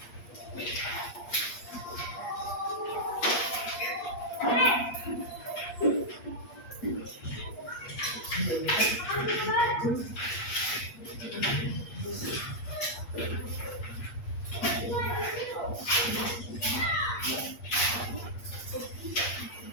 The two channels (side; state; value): right; late; 8.4 ms